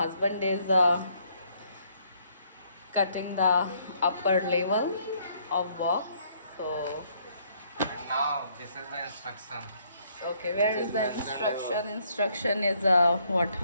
is cutting the upper level of box. So Now this is the instruction. okay, where is the instruction? Instruction is what?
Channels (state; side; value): inverted; both; correlation -0.68